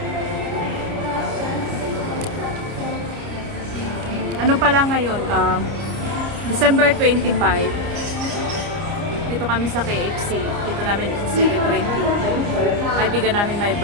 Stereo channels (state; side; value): late; left; 29 ms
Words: Ano pala ngayon? December 25. Dito kami sa KFC. Dito namin i-celebrate yung kaibigan namin my